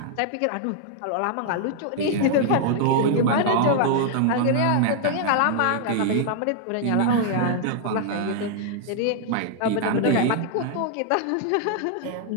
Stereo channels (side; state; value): both; different; correlation 0.00